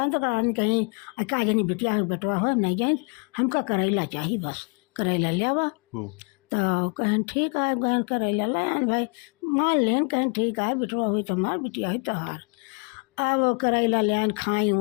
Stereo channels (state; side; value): quieter; right; 35.8 dB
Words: तो रानी कहीं का जानी बिटिया हो बेटवा हो नहीं जाए, हमका करेला चाहिए बस, करेला ले आवा। तो कहन ठीक है, कहन करेला ले आन भाई, मान लेन कहन ठीक है बिटवा हुई तो हमार बिटिया हुई तोहार। अब करेला ले आन खाई